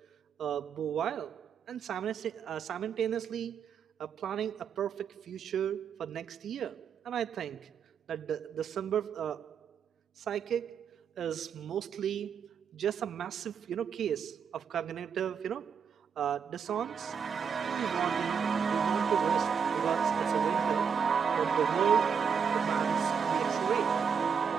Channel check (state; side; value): quieter; left; 6.8 dB